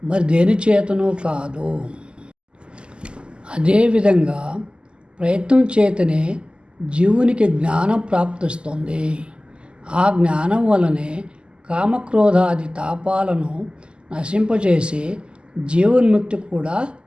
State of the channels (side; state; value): left; late; 0.050 ms